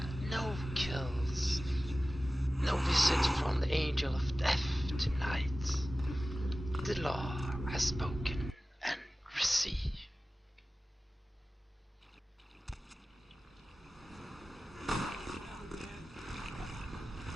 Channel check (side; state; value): both; normal; correlation 0.96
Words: No kills. No visit from the angel of death tonight. The law has spoken and received.